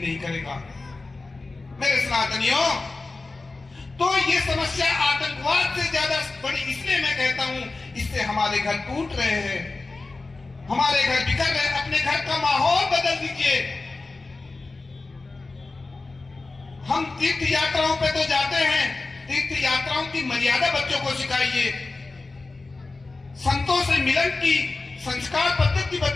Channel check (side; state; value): right; quieter; 3.5 dB